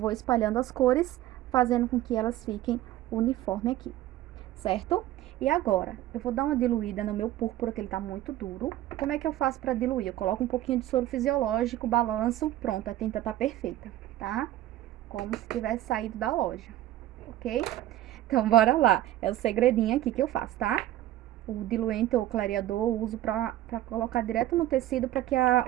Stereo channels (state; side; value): quieter; left; 14.1 dB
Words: espalhando as cores, fazendo com que elas fiquem uniforme aqui, certo? E agora, eu vou dar uma diluída no meu púrpura, que ele tá muito duro. Como é que eu faço pra diluir? Eu coloco um pouquinho de soro fisiológico, balanço, pronto, a tinta tá perfeita, tá? Como se tivesse saído da loja, ok? Então, bora lá. É o segredinho aqui que eu faço, tá? O diluente ou clareador eu uso pra colocar direto no tecido, pra que